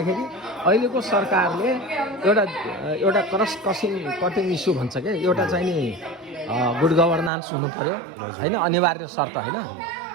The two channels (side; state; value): left; drops out; at 7.3 s